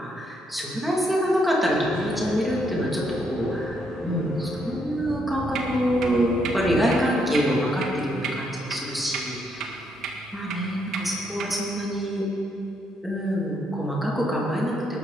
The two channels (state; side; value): normal; both; correlation 0.75